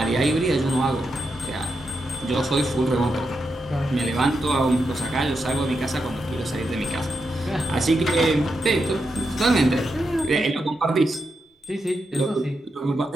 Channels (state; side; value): normal; both; correlation 0.85